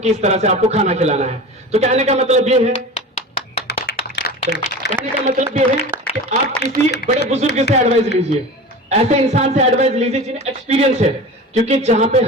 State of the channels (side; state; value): both; normal; correlation 0.33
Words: इस तरह से आपको खाना खिलाना है। तो कहने का मतलब ये है, कि आप किसी बड़े बुजुर्ग से एडवाइस लीजिए, ऐसे इंसान से एडवाइस लीजिए जिन्हें एक्सपीरियंस है, क्योंकि जहां पे